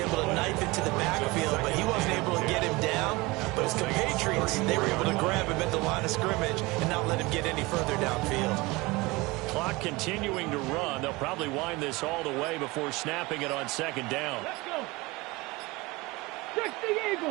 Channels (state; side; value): quieter; left; 22.9 dB